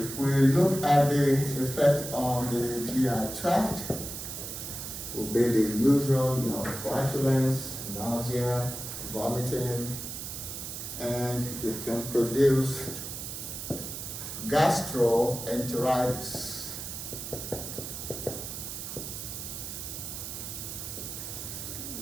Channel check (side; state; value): right; noise; hiss, 7 dB below the sound